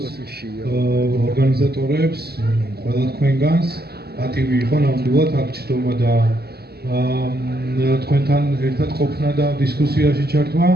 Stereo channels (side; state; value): left; late; 0.46 ms